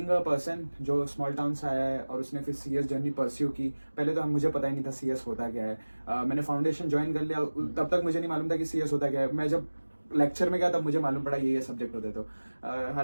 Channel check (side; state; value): both; inverted; correlation -1.00